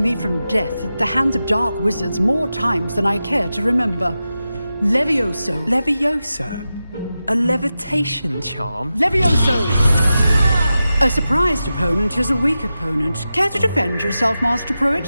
from death at the hands of dark wizards more times than I care to remember. Levioso. Levioso? A levitation charm? Levioso! A surprised opponent is a weak opponent. Care to defend yourself, Master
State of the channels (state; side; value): inverted; both; correlation -0.92